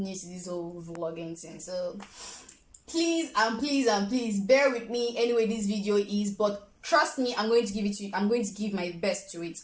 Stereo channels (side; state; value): both; identical; correlation 1.00